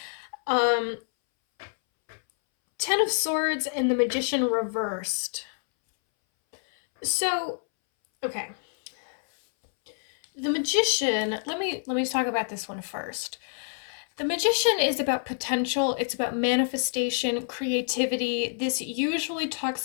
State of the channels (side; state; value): right; silent; 60 dB below the other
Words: Um, Ten of Swords and the Magician reversed. So, okay. The Magician, let me talk about this one first. The Magician is about potential, it's about manifestation, creativity. This usually talks